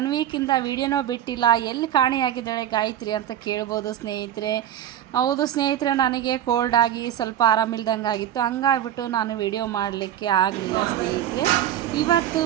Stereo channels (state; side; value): quieter; left; 11.2 dB